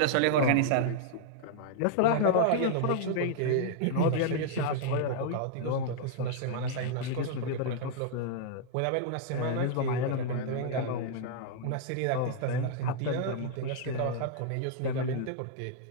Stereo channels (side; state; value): both; different; correlation -0.01